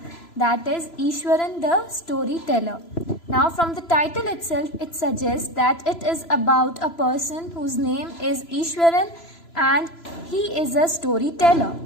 that is Ishwaran the Storyteller. Now, from the title itself, it suggests that it is about a person whose name is Ishwaran and he is a storyteller.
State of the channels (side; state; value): right; late; 3.0 ms